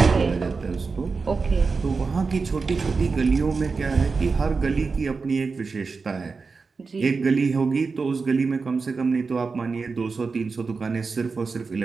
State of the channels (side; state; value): left; quieter; 4.6 dB